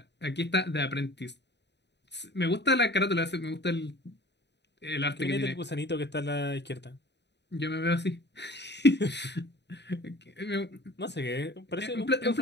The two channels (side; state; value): right; late; 0.50 ms